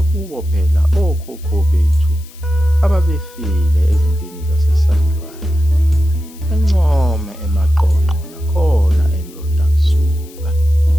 kubo phela okhokho bethu ababefile ezimpini zasesandlwana, eNcome, eMaqonqo nakhona eNdonda kusuka.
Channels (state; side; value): noise; left; hiss, 23 dB below the sound